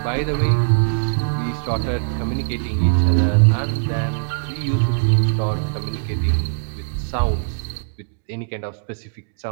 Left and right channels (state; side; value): silent; left; digital silence